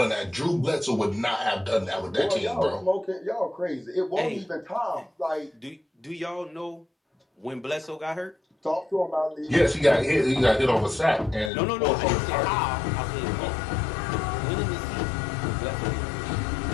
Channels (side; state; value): right; drops out; at 11.5 s